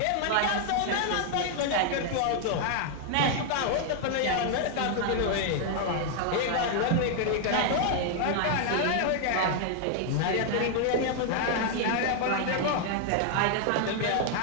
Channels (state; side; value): different; both; correlation 0.00